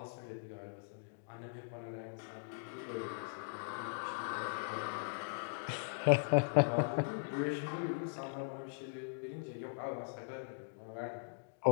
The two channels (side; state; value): right; silent; digital silence